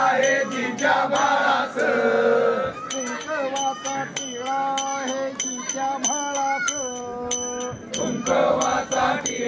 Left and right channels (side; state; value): both; identical; correlation 1.00